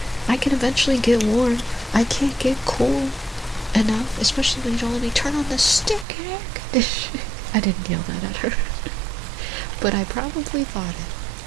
I can eventually get warm. I can't get cool enough, especially when you don't let me turn on the stick air conditioner. I didn't yell that at her. But I probably thought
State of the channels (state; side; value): drops out; left; at 6.1 s